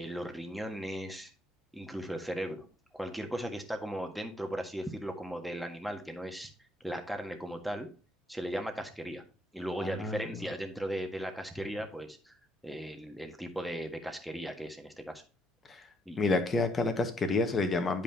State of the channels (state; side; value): normal; both; correlation 0.72